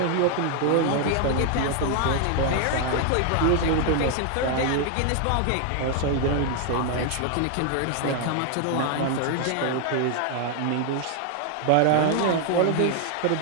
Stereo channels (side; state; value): both; different; correlation 0.00